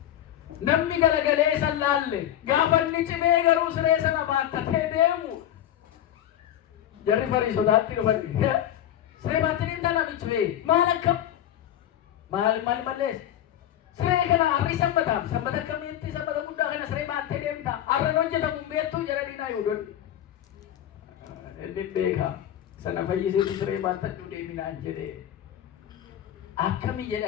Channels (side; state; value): right; quieter; 11.4 dB